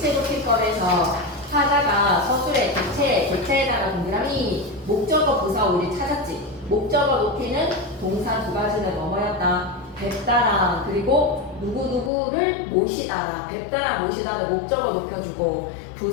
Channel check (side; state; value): right; drops out; at 12.1 s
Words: 높임법에서 타자가 서술의 객체에다가 동그라미 목적어 부사 우리 찾았지. 목적어 높이는 동사 두 가지는 뭐뭐였다? 뵙다랑 그리고 누구누구를 모시다라. 뵙다랑 모시다는 목적어 높여주고